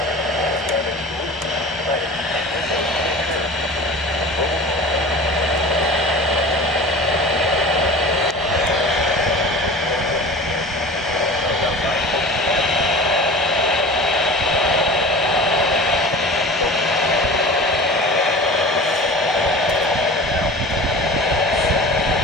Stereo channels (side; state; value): both; normal; correlation 0.37